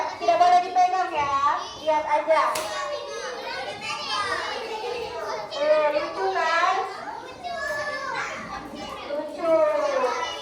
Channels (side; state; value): both; identical; correlation 1.00